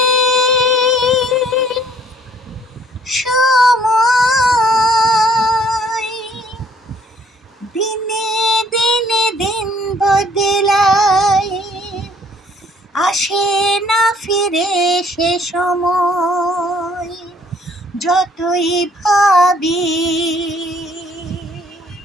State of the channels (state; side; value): normal; both; correlation 0.61